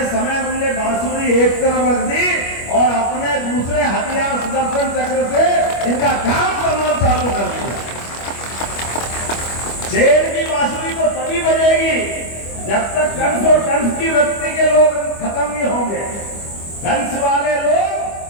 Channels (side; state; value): right; late; 25 ms